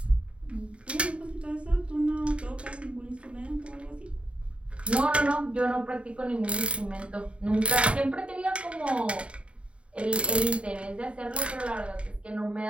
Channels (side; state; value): left; late; 0.060 ms